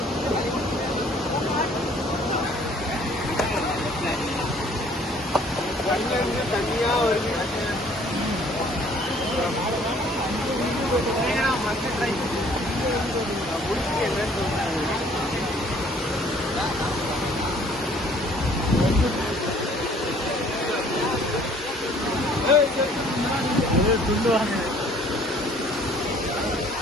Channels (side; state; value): both; normal; correlation 0.57